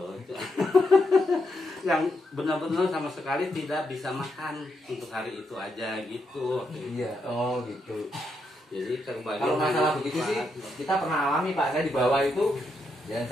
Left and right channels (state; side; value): normal; both; correlation 0.81